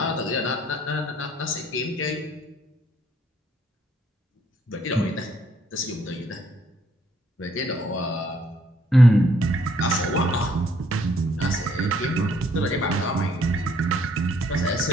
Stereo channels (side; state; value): both; normal; correlation 0.67